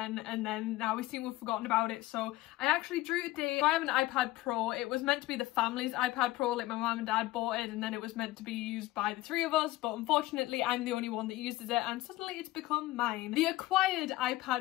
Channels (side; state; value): right; quieter; 17.8 dB